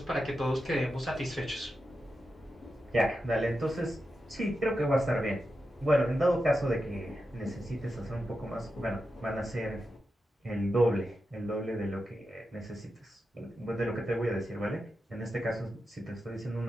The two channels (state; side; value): normal; both; correlation 0.89